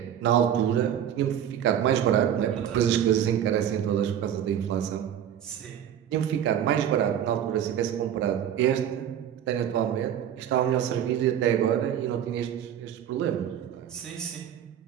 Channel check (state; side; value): quieter; left; 9.9 dB